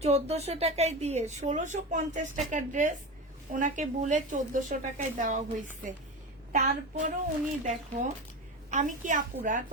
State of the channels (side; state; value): both; normal; correlation 0.24